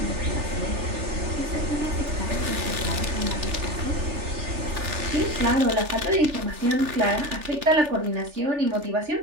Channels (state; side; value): late; left; 3.4 ms